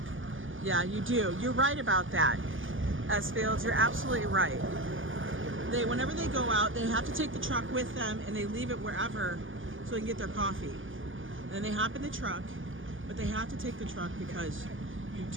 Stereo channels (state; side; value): late; left; 0.58 ms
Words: Yeah, you do. You're right about that, S-Fields. You're absolutely right. Whenever they go out, they have to take the truck with them and they leave it wherever so they can get their coffee. Then they hop in the truck, but they have to take the truck because you